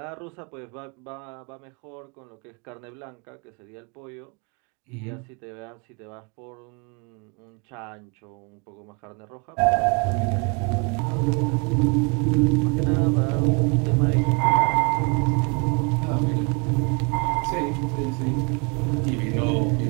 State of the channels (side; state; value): left; quieter; 33.4 dB